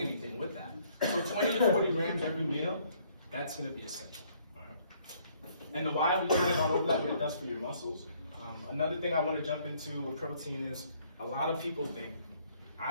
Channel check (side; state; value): both; inverted; correlation -0.64